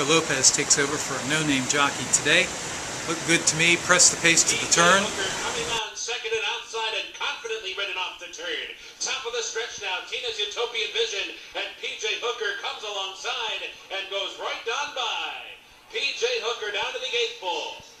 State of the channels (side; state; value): both; identical; correlation 1.00